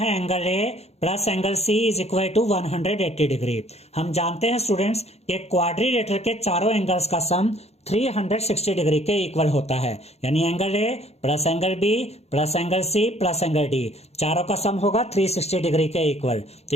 angle A plus angle C is equal to 180 degree. हम जानते हैं स्टूडेंट्स कि क्वाड्रिलेटरल के चारों एंगल्स का सम 360 डिग्री के इक्वल होता है, यानी angle A plus angle B plus angle C plus angle D चारों का सम होगा 360 डिग्री के इक्वल। तो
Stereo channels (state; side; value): late; right; 0.31 ms